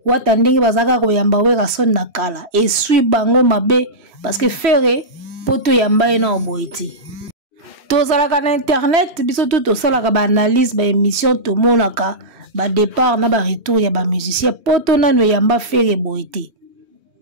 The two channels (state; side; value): late; left; 3.1 ms